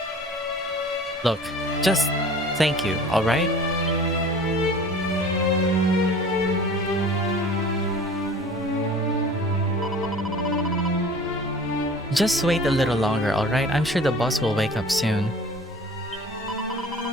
Look, just thank you, alright? Just wait a little longer, alright? I'm sure the boss will wake up soon.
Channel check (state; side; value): normal; both; correlation 0.44